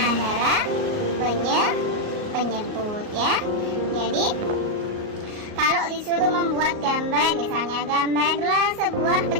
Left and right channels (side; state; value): left; late; 38 ms